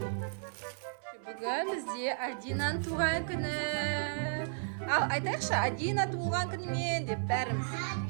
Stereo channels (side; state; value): left; silent; 55 dB below the other